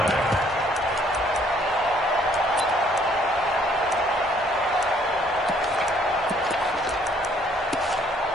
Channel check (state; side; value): normal; both; correlation 0.63